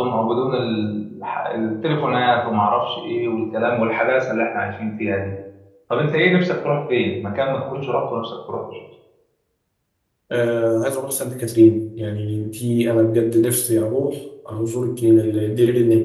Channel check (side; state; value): both; identical; correlation 1.00